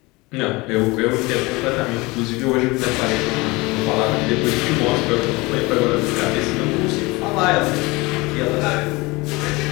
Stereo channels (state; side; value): quieter; right; 23.5 dB